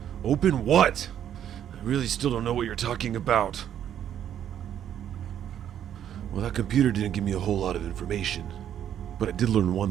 Open what? I really still don't know what you're talking about. Well, that computer didn't give me a whole lot of information, but I did learn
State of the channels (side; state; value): left; quieter; 10.0 dB